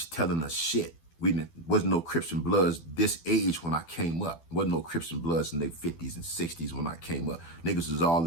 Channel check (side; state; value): right; late; 12 ms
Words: telling us shit. Wasn't no Crips and Bloods this age when I came up. Wasn't no Crips and Bloods in their 50s and 60s when I came up. Niggas was all